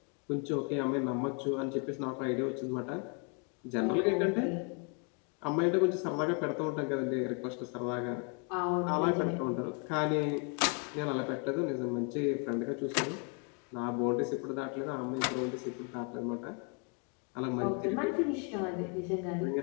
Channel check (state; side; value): quieter; right; 36.6 dB